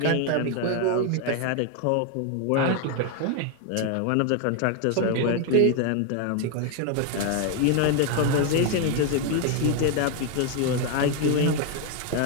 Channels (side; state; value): both; different; correlation 0.01